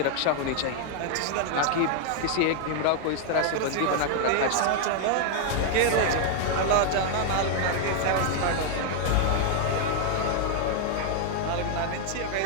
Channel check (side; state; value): both; different; correlation 0.00